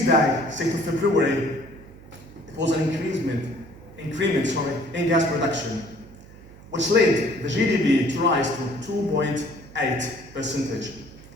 6th of February, it was an increment in gas production, which led the GDP to rise to 2.8%.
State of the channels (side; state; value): right; noise; hum, 20 dB below the sound